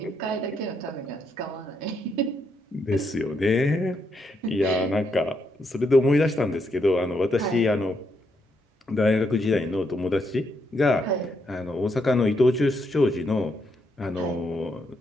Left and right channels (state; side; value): normal; both; correlation 0.78